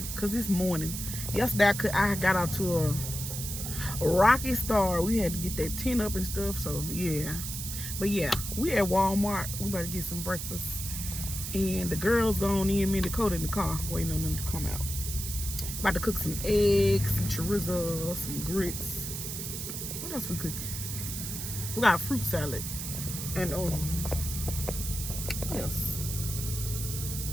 because this morning. Yesterday I got out to a rocky start. We had to get that tent up and stuff. So yeah. But yeah, we at Walmart. We about to get some breakfast. And the girls gone in, me and Dakota in the car waiting on them to come out. About to cook some eggs, some chorizo, some grits. What else we cooking? We got a fruit salad. And what else?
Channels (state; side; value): noise; right; hiss, 6 dB below the sound